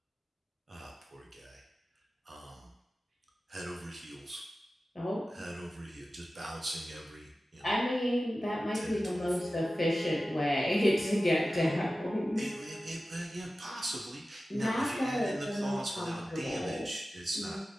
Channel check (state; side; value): normal; both; correlation 0.95